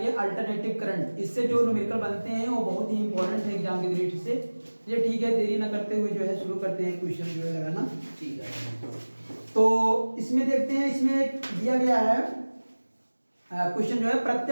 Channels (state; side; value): inverted; both; correlation -1.00